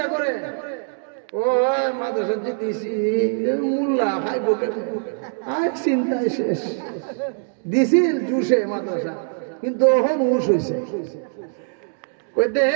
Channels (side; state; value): left; silent; digital silence